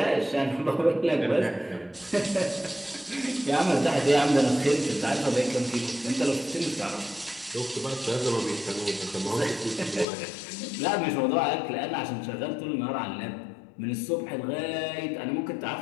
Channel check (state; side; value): drops out; right; at 10.1 s